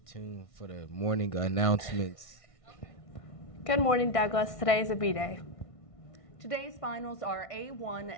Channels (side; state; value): right; late; 1.6 ms